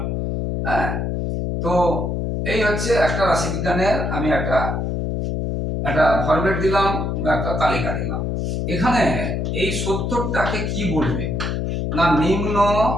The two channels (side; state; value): left; noise; hum, 1 dB below the sound